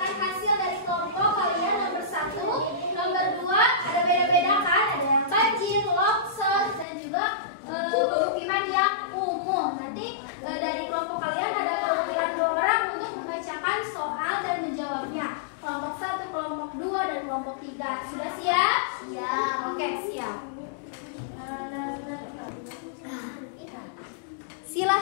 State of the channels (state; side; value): drops out; right; at 6.9 s